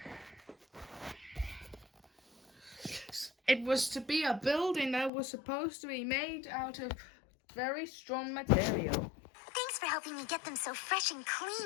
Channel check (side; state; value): right; drops out; at 5.1 s